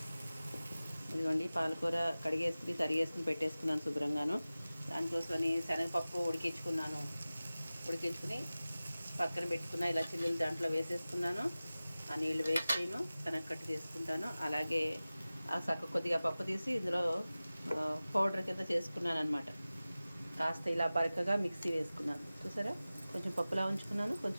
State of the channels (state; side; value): inverted; both; correlation -0.97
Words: ఇదిగోండి పాలకూర కడిగేసుకుని తరిగేసుకుని పెట్టేసుకున్నాను శుభ్రంగాను. దానికోసమని శనగపప్పు ఉడికించుకుని పక్కన పెట్టుకున్న ఇలా చిల్లులు దాంట్లో వేసేసుకున్నాను. ఆ నీళ్ళు వేస్ట్ చేయను, శనగకట్టు చేసుకుంటాను. అలాగే ఆ కొద్దిగా పప్పు తీసి ఇందులో పౌడర్ కింద చేసుకున్నాను అనమాట. కాస్త ఇలా బరకగా మిక్సీ వేసుకున్నాను. చూసారా, కొంచెం పప్పులా ఉంచుకున్నాను,